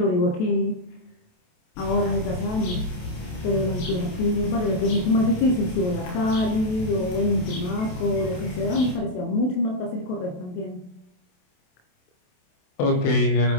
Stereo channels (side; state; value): right; late; 28 ms